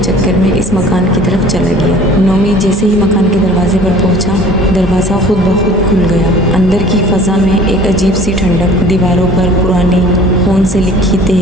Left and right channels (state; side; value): normal; both; correlation 0.48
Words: में इस मकान की तरफ चला गया। नोमी जैसे ही मकान के दरवाजे पर पहुंचा, दरवाज़ा खुद ब खुद खुल गया। अंदर की फ़ज़ा में एक अजीब सी ठंडक, दीवारों पर पुरानी खून से लिखी